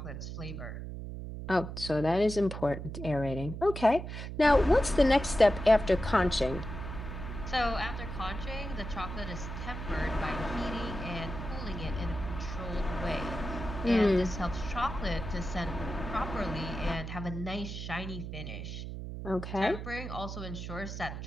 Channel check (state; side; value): noise; right; hum, 7 dB below the sound